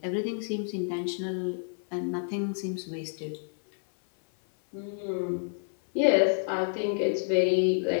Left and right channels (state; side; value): silent; right; 59 dB below the other